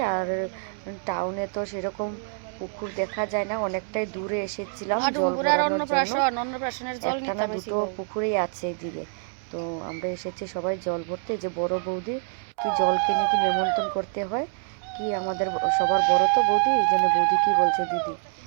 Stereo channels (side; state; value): left; silent; 61 dB below the other